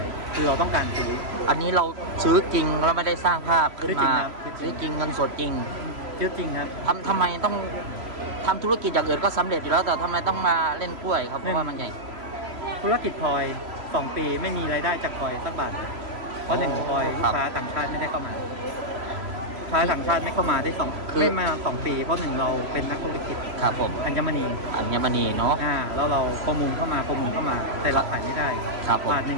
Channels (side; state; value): left; late; 3.0 ms